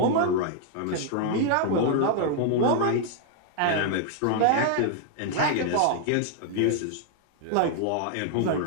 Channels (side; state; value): both; different; correlation 0.00